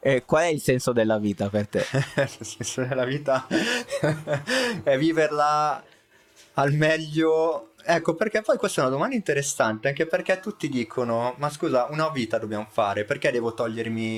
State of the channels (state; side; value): identical; both; correlation 1.00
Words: Qual è il senso della vita per te? Il senso della vita è viverla al meglio. Ecco, perché poi questa è una domanda interessante, anche perché tutti dicono, ma scusa, una vita dobbiamo fare, perché devo